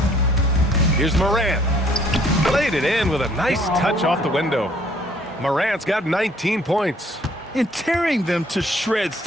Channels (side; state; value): both; normal; correlation 0.60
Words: Here's Morant. Played it in with a nice touch off the window. Morant's got 19 points. And tearing them to shreds